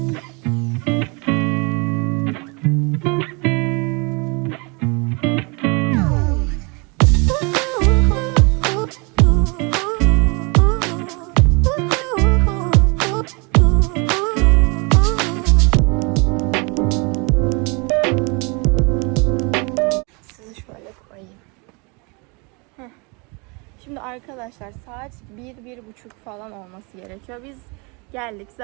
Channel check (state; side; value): quieter; left; 30.7 dB